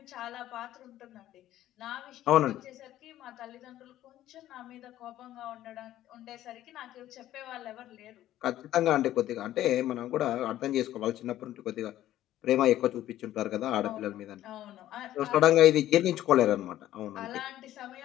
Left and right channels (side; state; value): right; quieter; 13.4 dB